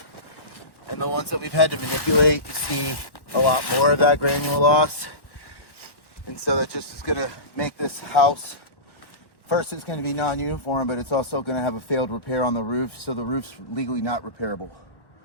and the ones that we've had to manipulate, you see a lot more of that granule loss. And so that just is going to make this house, first it's going to be non-uniform, but it's also going to have a failed repair on the roof, so the roof's legally not repairable.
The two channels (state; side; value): late; right; 1.1 ms